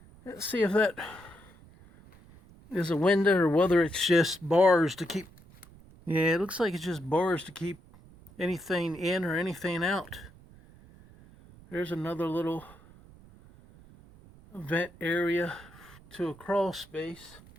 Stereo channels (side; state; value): right; noise; rumble, 23 dB below the sound